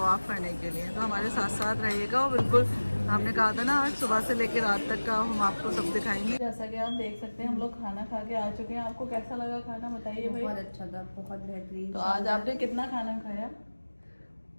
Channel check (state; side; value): inverted; both; correlation -1.00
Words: करने के लिए। तो हमारे साथ साथ रहिएगा। और बिल्कुल हमने कहा था ना आज सुबह से लेकर रात तक का हम आपको सब दिखाएंगे। जैसा कि आप देख सकते हैं हम लोग खाना खा के आ चुके हैं। आपको कैसा लगा खाना बताइए भाई। बहुत अच्छा था, बहुत बेहतरीन। तो आज आपने कितना खाना खाया?